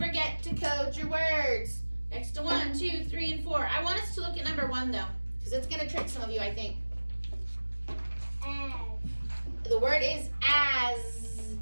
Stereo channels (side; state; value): both; inverted; correlation -1.00